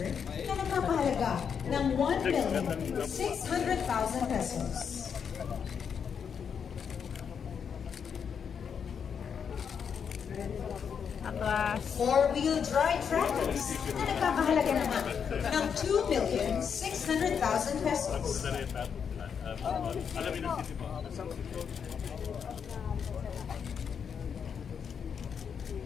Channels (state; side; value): quieter; right; 7.0 dB